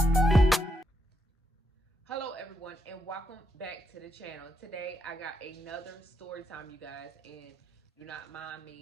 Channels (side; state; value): both; normal; correlation 0.80